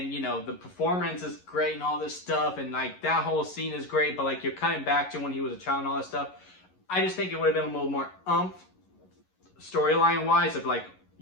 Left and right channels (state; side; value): late; right; 11 ms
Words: the performance is great and all this stuff, and like that whole scene is great, but like you're cutting back to when he was a child and all that stuff. I just think it would have been a little more storyline wise, of like,